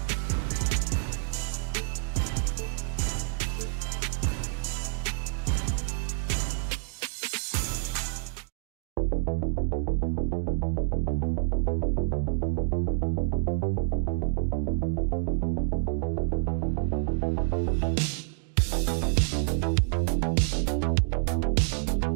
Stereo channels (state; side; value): silent; left; digital silence